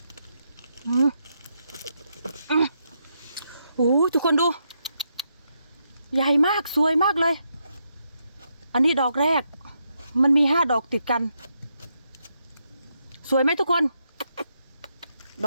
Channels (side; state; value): both; inverted; correlation -0.81